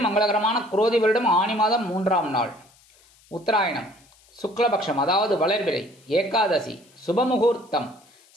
மங்களகரமான குரோதி வருடம் ஆனி மாதம் 3ஆம் நாள், உத்தராயணம், சுக்லபக்ஷம், அதாவது வளர்பிறை, ஏகாதசி, சுபமுகூர்த்தம்,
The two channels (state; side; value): noise; left; hiss, 30 dB below the sound